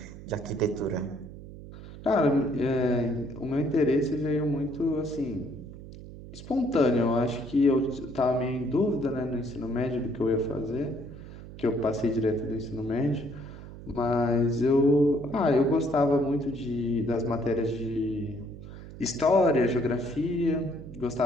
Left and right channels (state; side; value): noise; right; hum, 14 dB below the sound